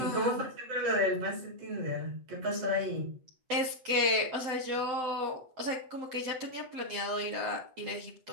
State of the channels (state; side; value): late; left; 7.8 ms